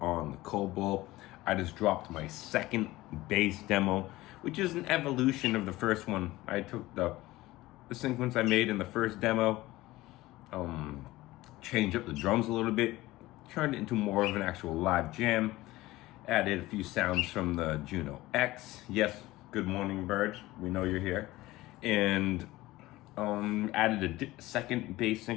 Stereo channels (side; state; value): right; quieter; 18.2 dB